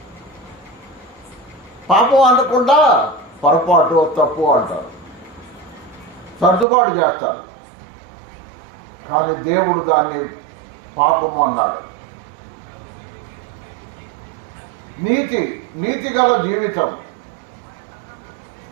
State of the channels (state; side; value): drops out; left; at 6.7 s